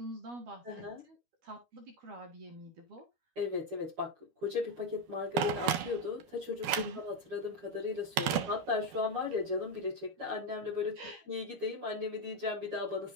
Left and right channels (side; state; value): left; late; 12 ms